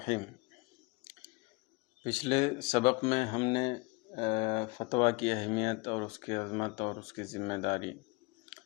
پچھلے سبق میں ہم نے فتویٰ کی اہمیت اور اس کی عظمت اور اس کی ذمہ داری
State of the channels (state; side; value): quieter; right; 27.0 dB